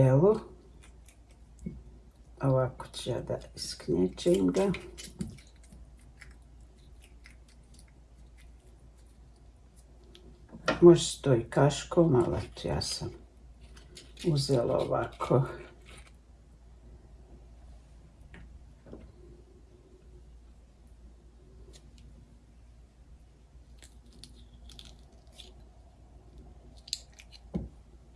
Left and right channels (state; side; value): identical; both; correlation 1.00